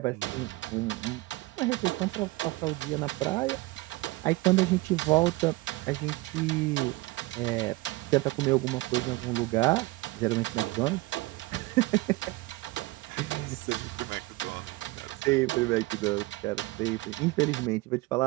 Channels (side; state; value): left; quieter; 21.0 dB